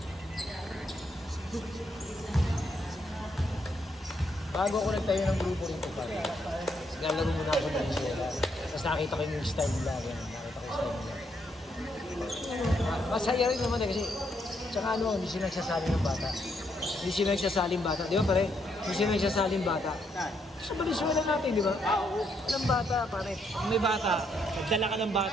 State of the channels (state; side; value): normal; both; correlation 0.75